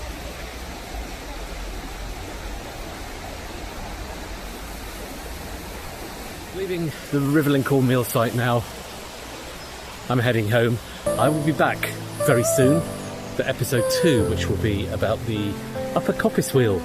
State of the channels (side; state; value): both; identical; correlation 1.00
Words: Leaving the Rivelin Corn Mill site now, I'm heading home. I will be back very soon for episode 2, which will be about the Upper Coppice Wheel.